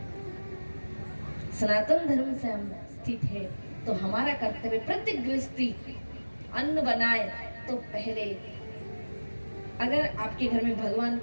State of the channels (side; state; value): both; inverted; correlation -1.00